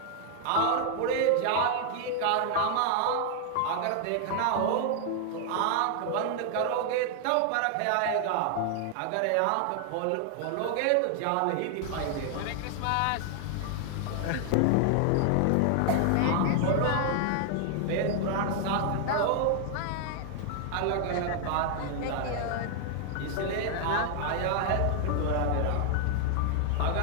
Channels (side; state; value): both; different; correlation 0.00